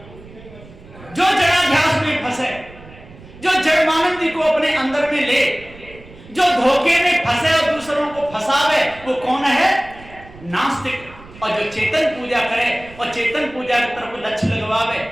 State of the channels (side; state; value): right; noise; rumble, 20 dB below the sound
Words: जो जड़ाध्यास में फंसे, जो जड़मानंदी को अपने अंदर में ले, जो धोखे में फंसे और दूसरों को फंसावे वो कौन है? नास्तिक। और जो चेतन पूजा करे और चेतन पूजा की तरफ लक्ष्य लगवावे